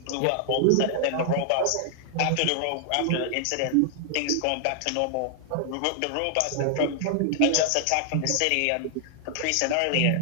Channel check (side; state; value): both; different; correlation -0.01